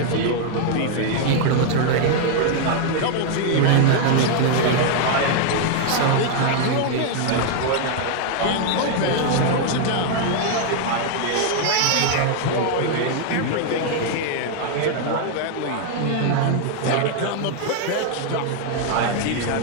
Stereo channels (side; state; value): both; different; correlation 0.00